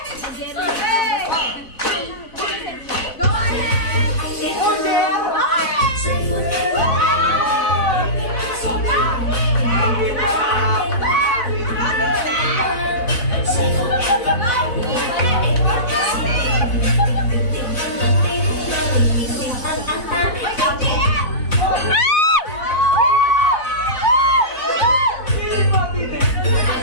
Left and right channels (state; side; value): late; right; 4.0 ms